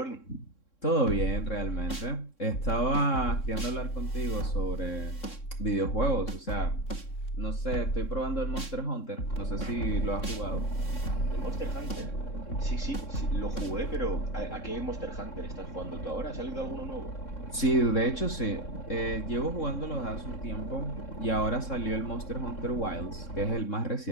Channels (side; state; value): right; late; 3.7 ms